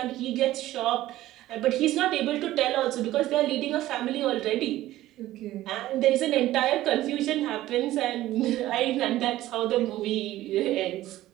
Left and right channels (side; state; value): left; quieter; 15.2 dB